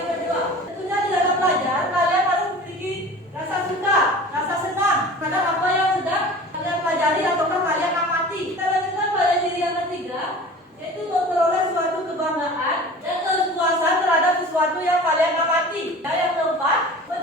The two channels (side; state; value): both; normal; correlation 0.39